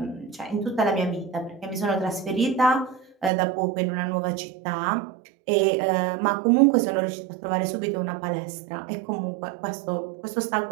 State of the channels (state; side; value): drops out; left; at 3.3 s